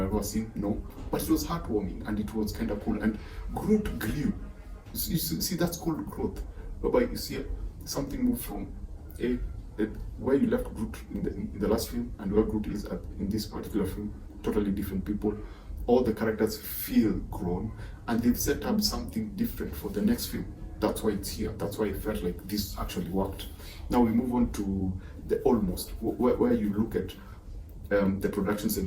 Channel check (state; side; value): identical; both; correlation 1.00